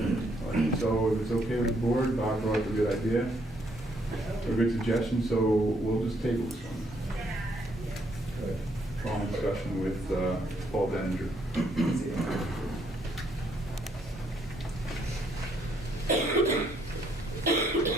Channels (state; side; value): normal; both; correlation 0.71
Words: All right, so if it's okay with the board, Bob brought up a good idea, a good suggestion, so we'll just table this one. Long discussion with Paul Denninger.